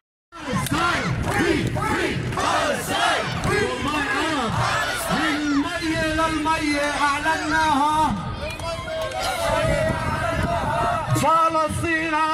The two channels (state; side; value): identical; both; correlation 1.00